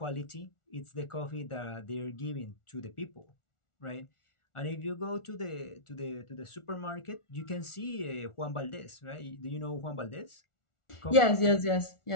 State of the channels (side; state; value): right; late; 1.4 ms